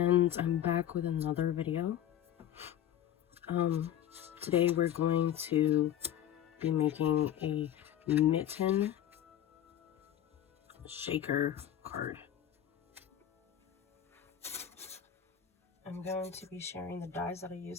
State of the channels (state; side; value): quieter; right; 10.7 dB